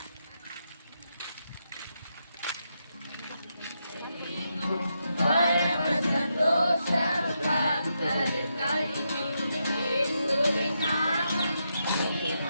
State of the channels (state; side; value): inverted; both; correlation -0.83